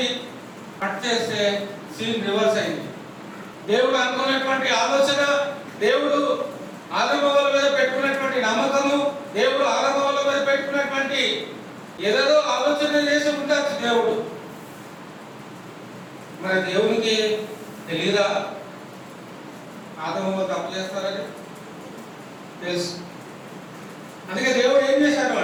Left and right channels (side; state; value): both; identical; correlation 1.00